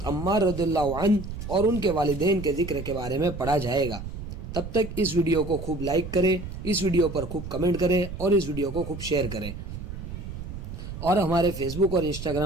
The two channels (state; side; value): noise; right; rumble, 9 dB below the sound